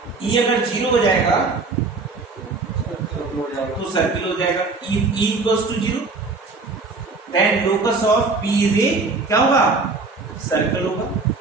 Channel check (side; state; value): left; quieter; 3.9 dB